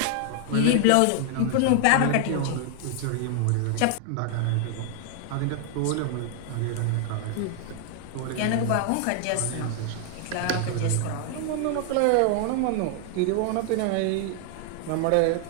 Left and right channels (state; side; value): different; both; correlation 0.00